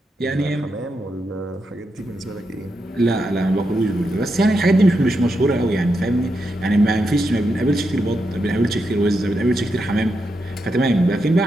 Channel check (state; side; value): normal; both; correlation 0.85